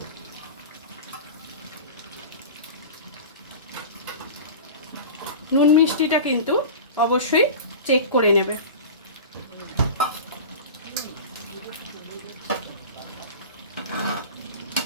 নুন মিষ্টিটা কিন্তু অবশ্যই চেক করে নেবে।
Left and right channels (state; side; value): inverted; both; correlation -0.32